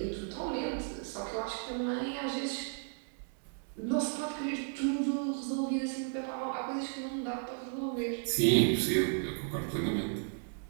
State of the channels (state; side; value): silent; left; 55 dB below the other